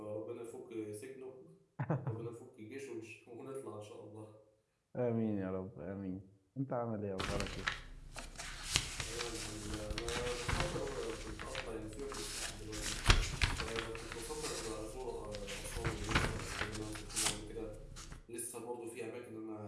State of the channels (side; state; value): both; identical; correlation 1.00